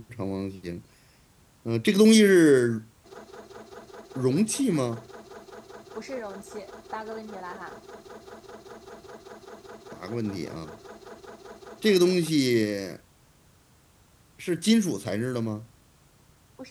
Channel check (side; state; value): both; identical; correlation 1.00